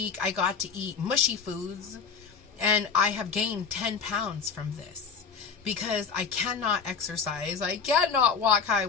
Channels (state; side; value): quieter; right; 5.9 dB